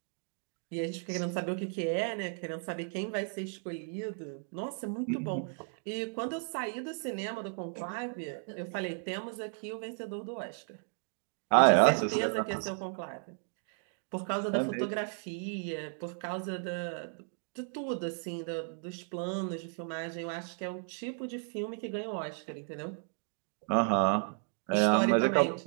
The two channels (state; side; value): silent; left; 55 dB below the other